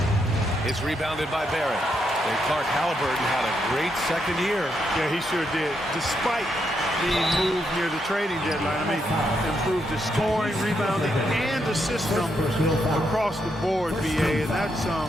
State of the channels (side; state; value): both; normal; correlation 0.80